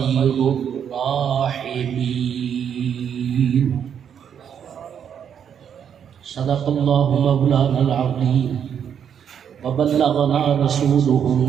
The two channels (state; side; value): quieter; left; 8.3 dB